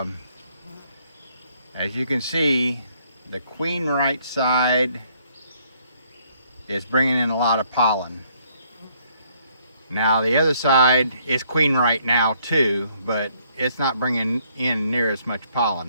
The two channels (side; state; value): both; inverted; correlation -0.67